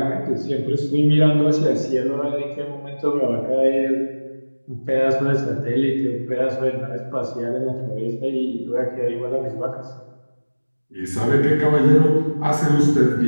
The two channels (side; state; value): both; inverted; correlation -1.00